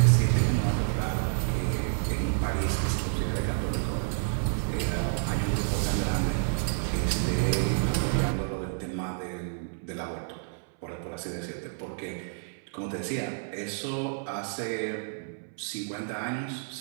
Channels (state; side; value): silent; left; 58 dB below the other